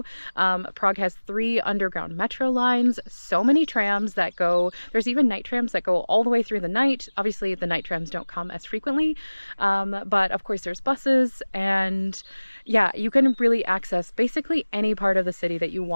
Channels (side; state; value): both; inverted; correlation -1.00